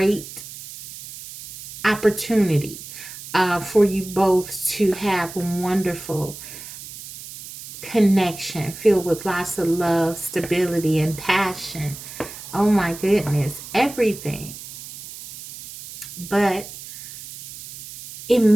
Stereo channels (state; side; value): noise; right; hiss, 13 dB below the sound